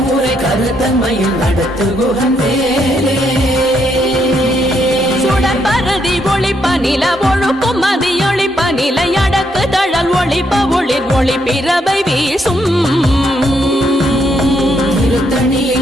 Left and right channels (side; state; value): both; normal; correlation 0.75